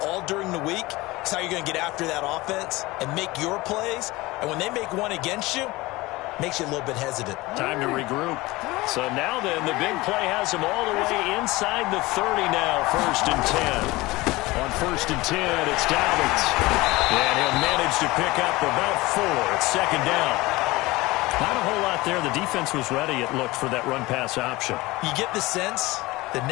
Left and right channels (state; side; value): quieter; right; 20.8 dB